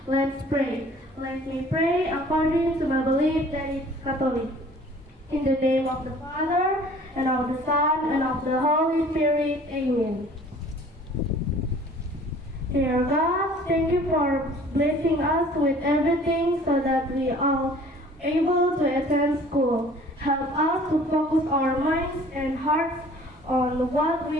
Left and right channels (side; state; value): both; normal; correlation 0.50